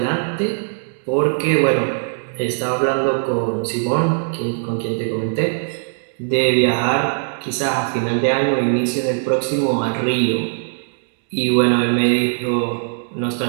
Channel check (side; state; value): left; silent; digital silence